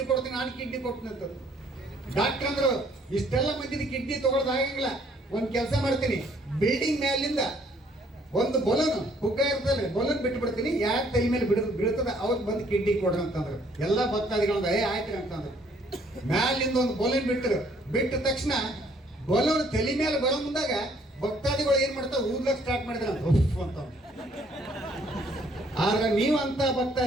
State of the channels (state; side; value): normal; both; correlation 0.63